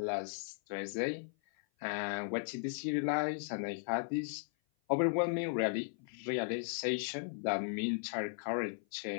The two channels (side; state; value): right; silent; 53 dB below the other